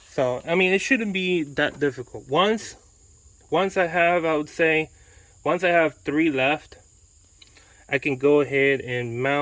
So I mean, it shouldn't be that difficult. Once I have, I would say, once I have 3 left, I can go ahead and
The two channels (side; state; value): both; identical; correlation 1.00